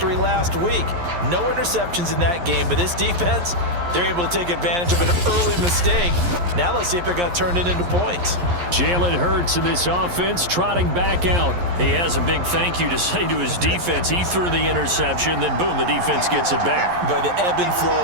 last week. No interceptions in that game, but this defense, they're able to take advantage of an early mistake. Now let's see if they're going to turn it into points. Jalen Hurts in this offense trotting back out. He has a big thank you to say to his defense. He threw the interception, then boom, the defense gets it back. But the ebb and flow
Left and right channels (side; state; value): left; late; 11 ms